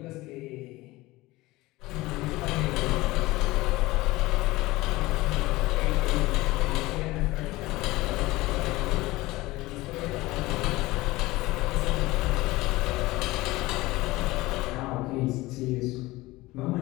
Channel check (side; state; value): right; quieter; 19.7 dB